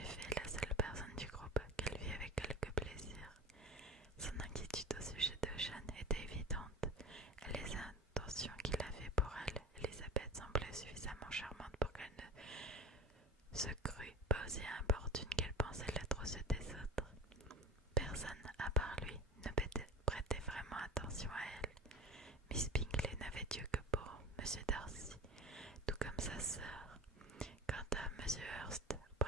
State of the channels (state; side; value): normal; both; correlation 0.33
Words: effet la seule personne du groupe qu'elle vit avec quelque plaisir. Son inquiétude au sujet de Jeanne était évidente, et les intentions qu'il avait pour elle, Elisabeth semblait suffisamment charmante pour qu'elle ne se crût pas aussi importune qu'elle pensait l'être aux yeux des autres. Personne, à part lui, ne prêtait vraiment attention à elle. Miss Bingley n'avait Dieu que pour M. Darcy, tout comme sa sœur. Quant à M. Hurst,